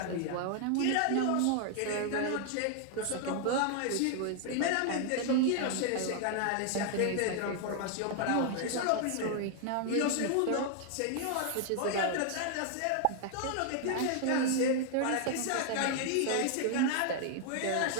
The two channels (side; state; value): both; different; correlation 0.00